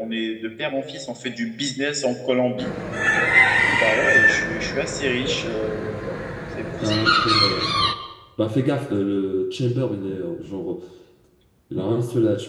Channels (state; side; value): identical; both; correlation 1.00